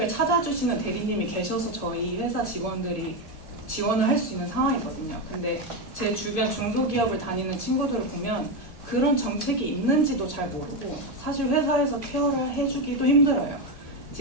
찾아주시는 대리님이 계셔서 저희 회사 직원들이 지원을 할 수 있는 상황이거든요. 근데 제 주변 중소기업을 다니는 친구들을 보면 그런 정책이 있는지도 잘 모르고 사실 회사에서 케어를 해주기도 힘들어요.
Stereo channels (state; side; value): late; right; 1.8 ms